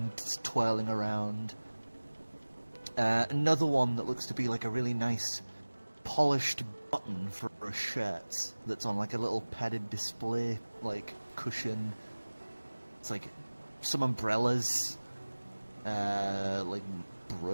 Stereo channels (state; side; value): inverted; both; correlation -1.00